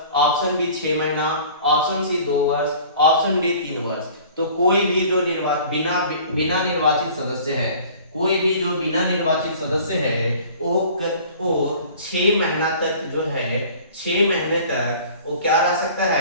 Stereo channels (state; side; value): inverted; both; correlation -0.47